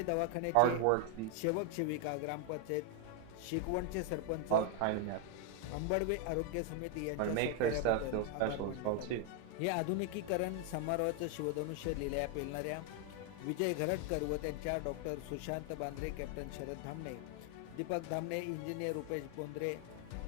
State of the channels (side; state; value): both; different; correlation 0.01